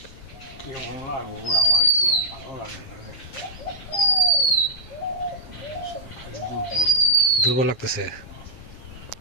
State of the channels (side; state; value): right; late; 7.4 ms